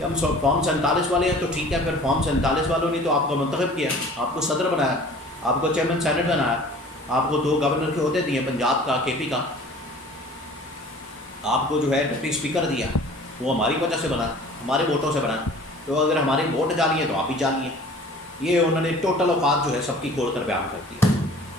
ہم فارم 47 والے ہیں، تو ٹھیک ہے، پھر فارم 47 والوں نے تو آپ کو منتخب کیا، آپ کو صدر بنایا، آپ کو چیئرمین سینٹ بنایا، آپ کو 2 گورنر کے عہدے دیے، پنجاب کا، کے پی کا، آپ کو جو ہے ڈپٹی اسپیکر دیا، وہ ہماری وجہ سے بنا، ہمارے ووٹوں سے بنا، تو اگر ہمارے ووٹ جعلی ہیں تو آپ بھی جعلی ہیں۔ یہ انہوں نے ٹوٹل اوقات جو ہے سب کی کھول کر بیان کر دیا،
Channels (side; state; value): both; normal; correlation 0.47